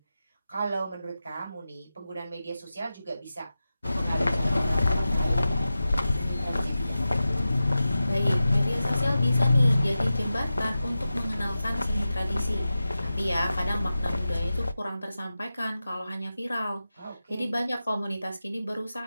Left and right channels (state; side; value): inverted; both; correlation -0.93